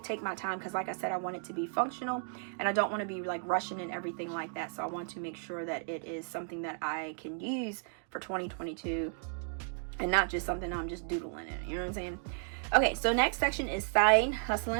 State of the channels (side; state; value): left; silent; 55 dB below the other